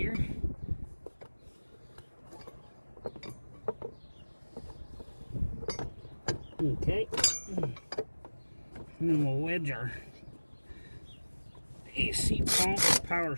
Okay. And then we'll wedge our AC pump power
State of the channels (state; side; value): inverted; both; correlation -1.00